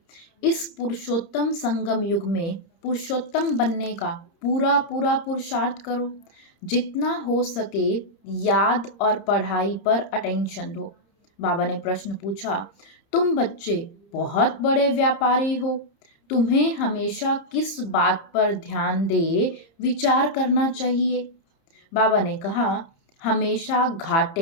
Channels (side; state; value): right; late; 30 ms